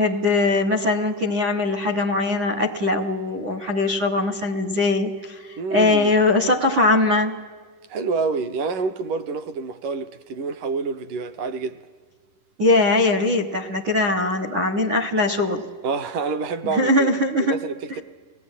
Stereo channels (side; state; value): left; late; 10 ms